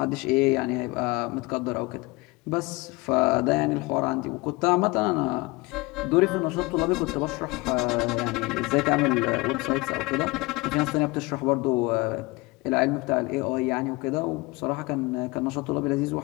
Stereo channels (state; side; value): quieter; right; 23.9 dB